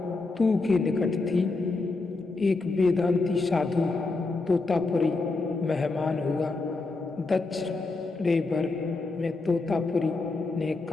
तू के निकट थी। एक वेदांती साधु तोतापुरी मेहमान हुआ। दक्षिणेश्वर में तोतापुरी ने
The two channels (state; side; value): quieter; right; 3.6 dB